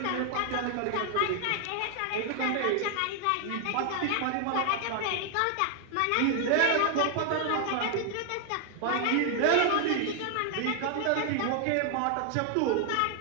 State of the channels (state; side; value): different; both; correlation 0.00